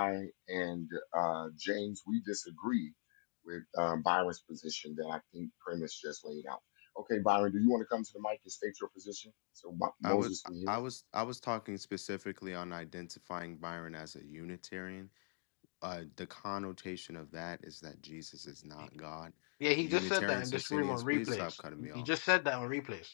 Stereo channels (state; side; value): silent; right; digital silence